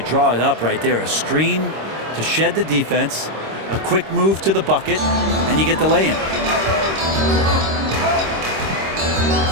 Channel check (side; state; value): left; late; 26 ms